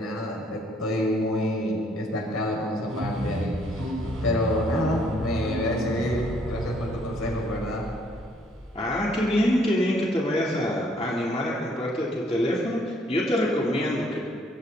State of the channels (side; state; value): both; normal; correlation 0.65